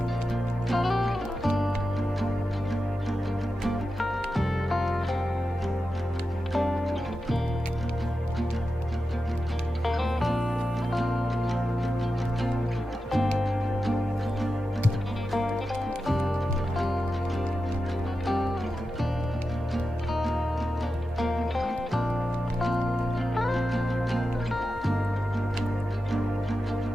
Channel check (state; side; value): normal; both; correlation 0.91